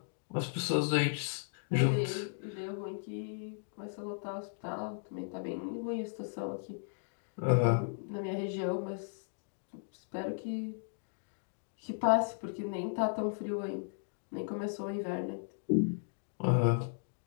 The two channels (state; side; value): silent; right; digital silence